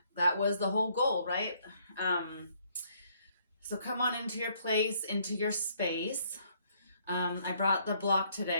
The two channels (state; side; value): inverted; both; correlation -0.67